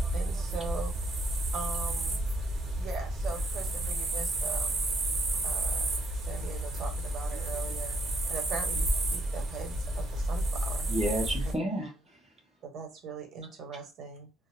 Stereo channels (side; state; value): both; normal; correlation 0.73